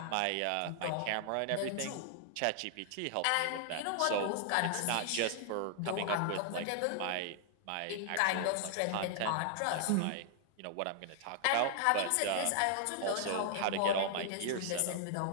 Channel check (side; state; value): both; different; correlation 0.00